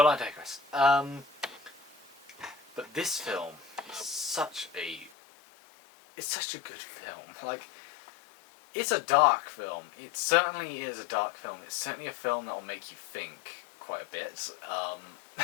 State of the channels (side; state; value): right; drops out; at 5.1 s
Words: I digress. But this film is such a good film. Like, it's a dark film. It certainly is a dark film. It's certainly a film that will make you think quite a bit.